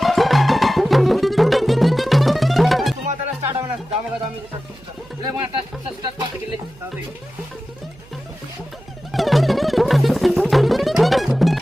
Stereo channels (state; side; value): noise; right; hum, 25 dB below the sound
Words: তোমার তাহলে স্টার্ট হবে না, দামে দামি লে মানে স্টার্ট করতে গেলে